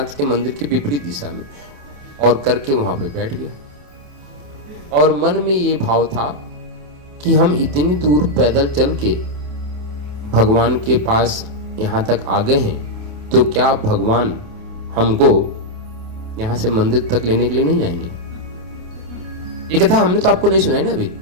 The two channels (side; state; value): left; late; 28 ms